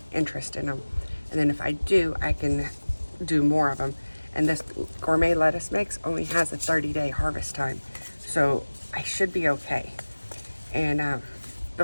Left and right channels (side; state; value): both; inverted; correlation -1.00